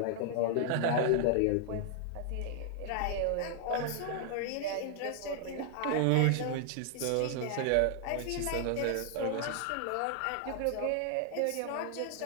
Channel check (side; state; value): both; different; correlation 0.00